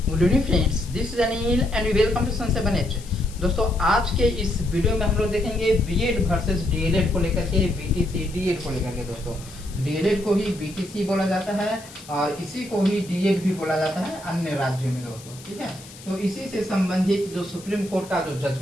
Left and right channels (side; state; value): left; noise; hiss, 19 dB below the sound